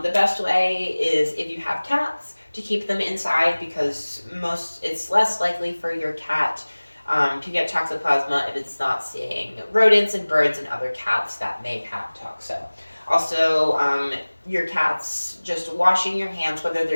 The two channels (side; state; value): both; inverted; correlation -1.00